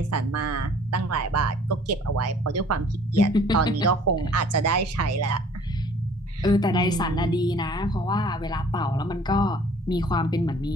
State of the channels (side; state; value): both; normal; correlation 0.53